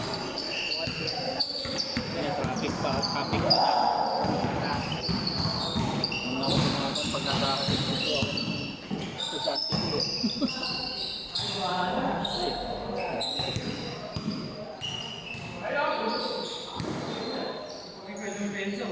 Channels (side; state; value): both; identical; correlation 1.00